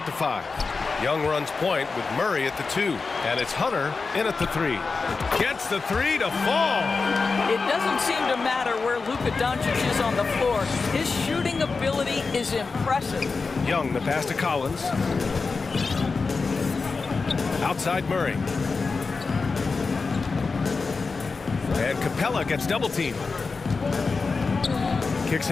the 5. Young runs point with Murray at the 2, and it's Hunter in at the 3. Gets the 3 to fall. It doesn't seem to matter where Luka Doncic is on the floor. His shooting ability is impressive. Young, the pass to Collins. Outside Murray. And Capella gets double teamed. Kicks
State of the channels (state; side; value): quieter; right; 4.4 dB